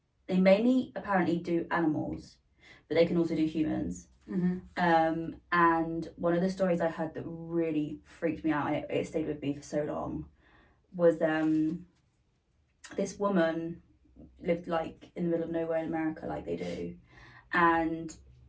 they mainly apparently do animals, but they can also do humans. Mm-hmm. And one of the stories I heard that really freaked me out, and it stayed with me for so long, was this woman lived like in the middle of nowhere in America, like they do, and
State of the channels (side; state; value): both; identical; correlation 1.00